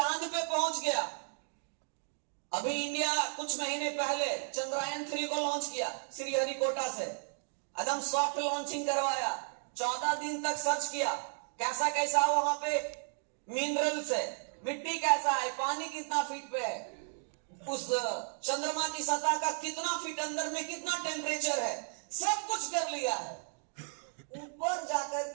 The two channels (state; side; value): silent; left; 55 dB below the other